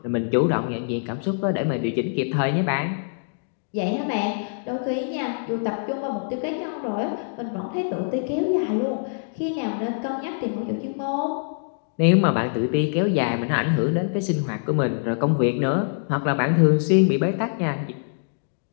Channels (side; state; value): right; silent; digital silence